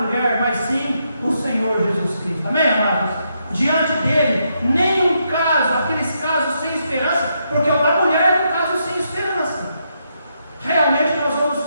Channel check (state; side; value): inverted; both; correlation -0.79